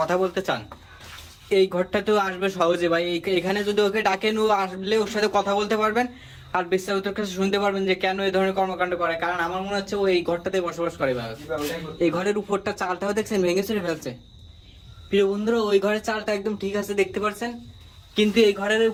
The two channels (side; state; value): both; identical; correlation 1.00